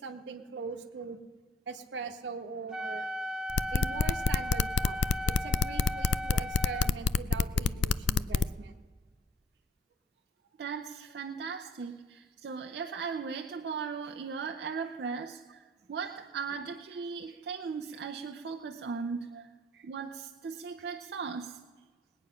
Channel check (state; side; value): normal; both; correlation 0.62